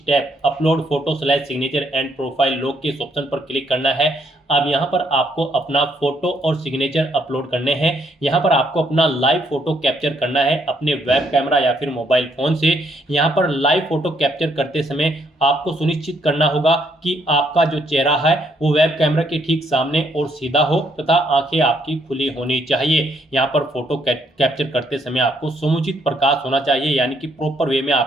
upload photo / signature and profile log के इस ऑप्शन पर क्लिक करना है। अब यहाँ पर आपको अपना फोटो और सिग्नेचर अपलोड करने हैं। यहाँ पर आपको अपना लाइव फोटो कैप्चर करना है अपने वेब कैमरा या फिर मोबाइल फोन से। यहाँ पर लाइव फोटो कैप्चर करते समय आपको सुनिश्चित करना होगा कि आपका जो चेहरा है वो वेब कैमरा के ठीक सामने और सीधा हो तथा आंखें आपकी खुली होनी चाहिए। यहाँ पर फोटो कैप्चर करते समय आपको समुचित प्रकाश होना चाहिए, यानी कि प्रॉपर वे में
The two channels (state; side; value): normal; both; correlation 0.71